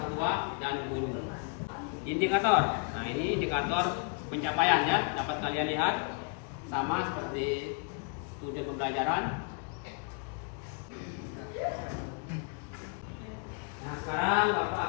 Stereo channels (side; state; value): right; quieter; 38.5 dB